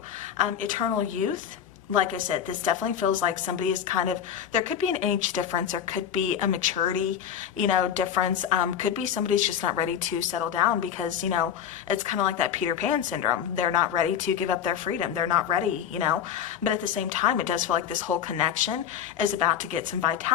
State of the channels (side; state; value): right; quieter; 9.1 dB